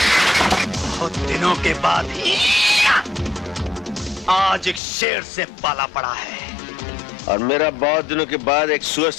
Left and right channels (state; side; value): drops out; right; at 4.8 s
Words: बहुत दिनों के बाद आज एक शेर से पाला पड़ा है, और मेरा बहुत दिनों के बाद एक सुअर